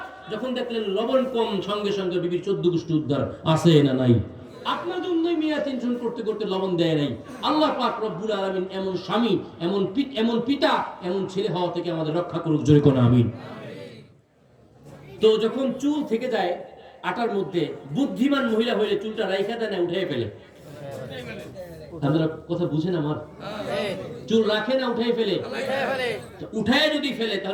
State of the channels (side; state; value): both; identical; correlation 1.00